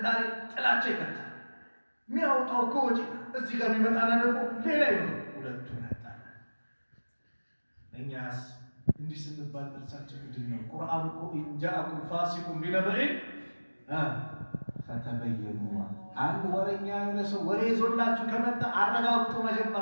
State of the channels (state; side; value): inverted; both; correlation -1.00